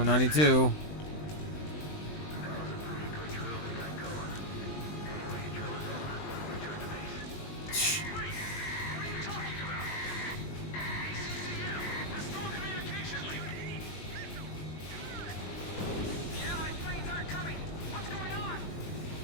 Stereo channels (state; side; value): late; right; 20 ms